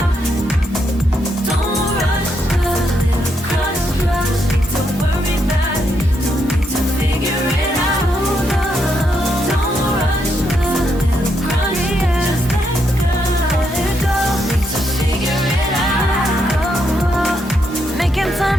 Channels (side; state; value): both; normal; correlation 0.79